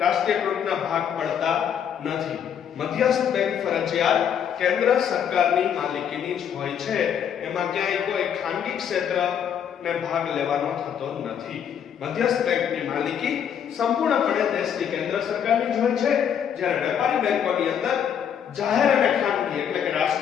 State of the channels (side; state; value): right; quieter; 8.5 dB